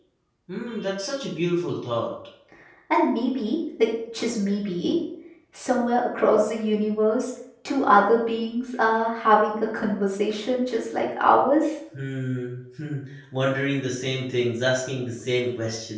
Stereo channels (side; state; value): both; identical; correlation 1.00